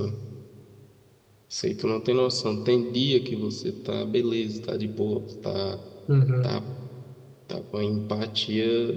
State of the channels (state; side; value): identical; both; correlation 1.00